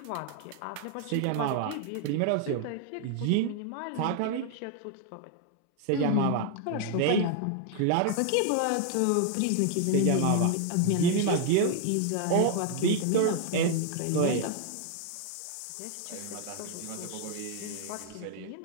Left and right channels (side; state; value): both; different; correlation 0.00